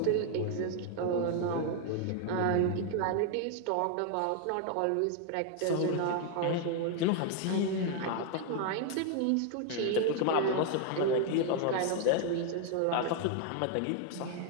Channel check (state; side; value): different; both; correlation 0.00